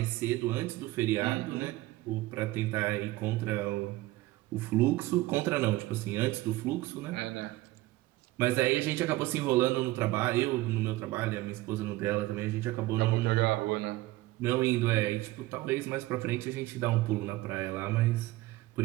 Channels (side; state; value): left; quieter; 18.1 dB